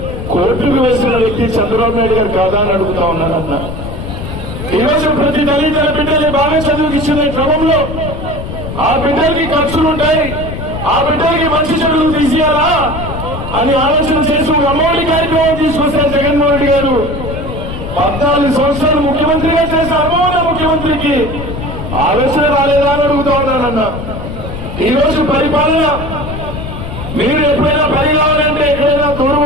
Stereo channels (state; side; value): noise; left; rumble, 7 dB below the sound